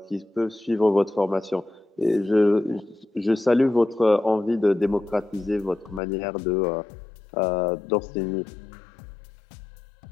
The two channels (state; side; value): drops out; right; at 6.0 s